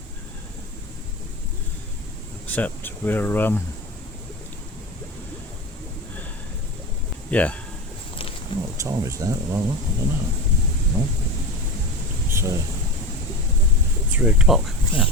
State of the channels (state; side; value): normal; both; correlation 0.25